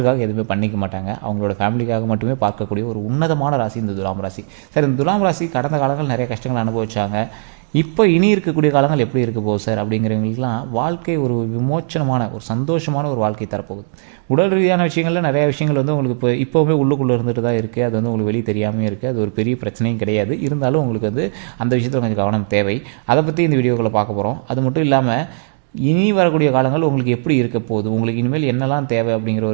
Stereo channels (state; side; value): silent; left; digital silence